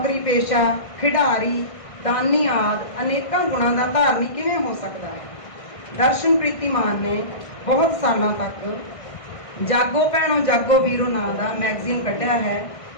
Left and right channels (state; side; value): late; right; 1.6 ms